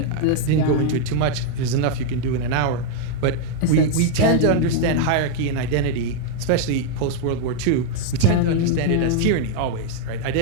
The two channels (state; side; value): different; both; correlation 0.00